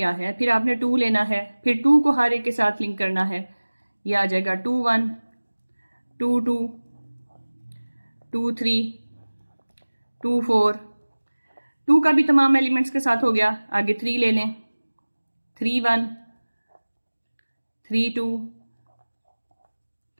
है, फिर आपने 2 लेना है, फिर 2 को हर एक के साथ लिंक करना है। ये आ जाएगा 2 1 2 2 2 3 2 4। 2 का भी तमाम एलिमेंट्स के साथ हो गया। आगे 3 ले लें, 3 1 3 2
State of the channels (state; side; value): inverted; both; correlation -1.00